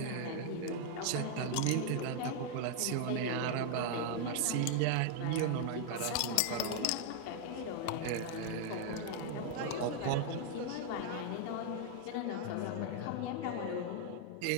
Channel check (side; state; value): both; different; correlation 0.00